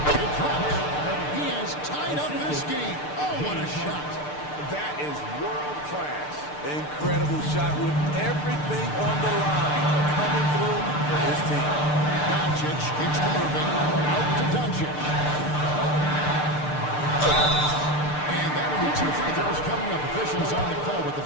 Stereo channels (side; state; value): right; late; 6.7 ms